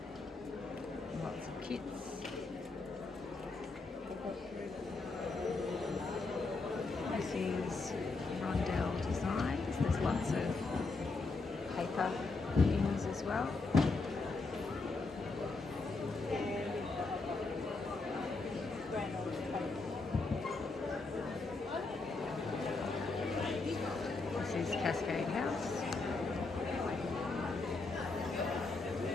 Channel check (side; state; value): right; quieter; 3.7 dB